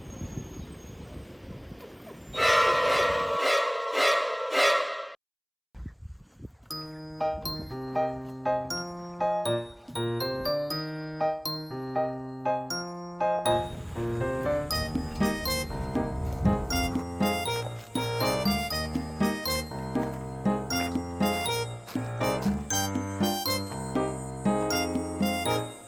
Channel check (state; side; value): identical; both; correlation 1.00